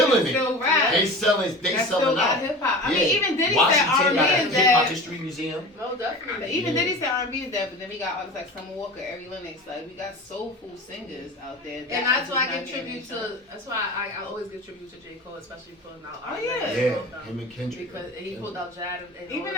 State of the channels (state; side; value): normal; both; correlation 0.34